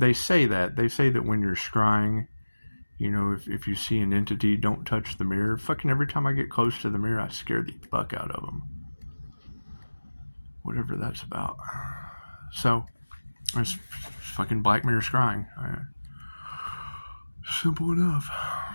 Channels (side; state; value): both; inverted; correlation -1.00